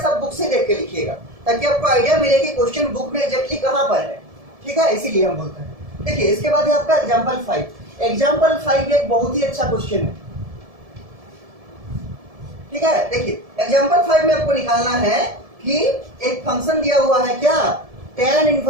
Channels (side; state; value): left; late; 1.7 ms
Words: सब बुक से देख के लिखिएगा ताकि आपको आइडिया मिले कि क्वेश्चन बुक में एग्जैक्टली कहां पर है। ठीक है, इसीलिए हम बोलते हैं। देखिए इसके बाद है आपका एग्जाम्पल 5। एग्जाम्पल 5 एक बहुत ही अच्छा क्वेश्चन है, ठीक है। देखिए एग्जाम्पल 5 में आपको निकालना है कि एक फंक्शन दिया हुआ है क्या, tan